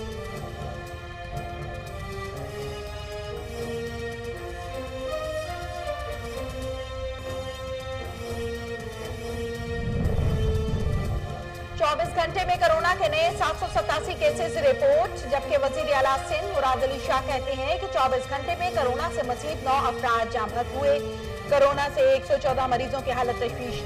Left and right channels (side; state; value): both; identical; correlation 1.00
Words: घंटे में कोरोना के नए 787 केसेस रिपोर्ट। जबकि वजीर आला सिंध मुराद अली शाह कहते हैं कि 24 घंटे में कोरोना से मजीद 9 अफराद जाँ बहक हुए। कोरोना से 114 मरीजों की हालत